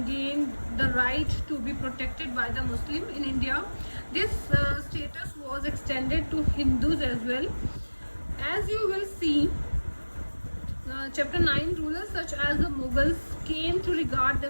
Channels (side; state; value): both; inverted; correlation -1.00